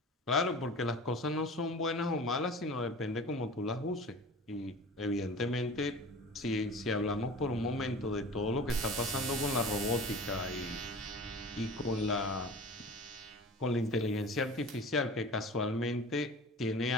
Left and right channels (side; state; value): both; normal; correlation 0.38